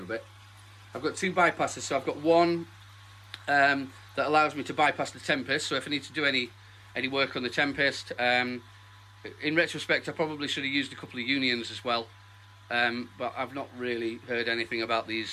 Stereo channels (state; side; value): identical; both; correlation 1.00